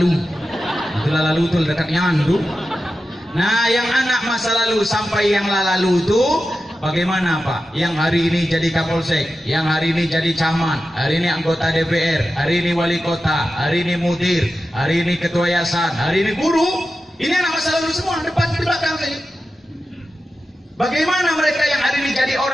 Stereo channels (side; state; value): both; normal; correlation 0.92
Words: Itu lalu itu dekatnya andu. Nah, yang anak masa lalu sampai yang lalu itu bagaimana Pak? Yang hari ini jadi Kapolsek, yang hari ini jadi camat, hari ini anggota DPR, hari ini wali kota, hari ini mudir, hari ini ketua yayasan, hari ini guru. Ini anak masa lalu semua, depan di belakang saja. Bagaimana mereka yang hari ini jadi